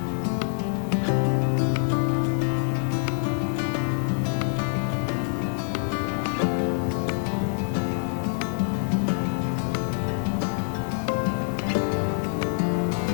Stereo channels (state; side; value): silent; right; digital silence